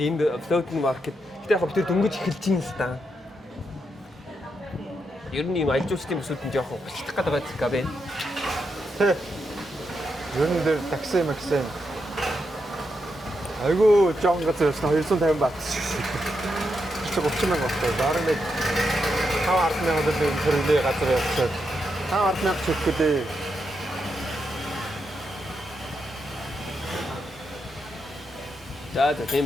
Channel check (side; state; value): both; normal; correlation 0.83